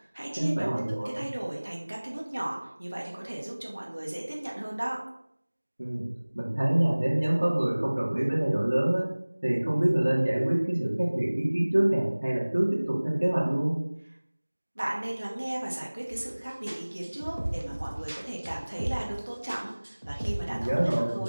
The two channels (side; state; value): both; inverted; correlation -1.00